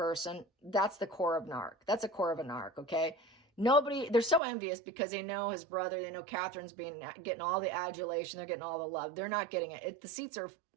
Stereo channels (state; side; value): drops out; left; at 4.4 s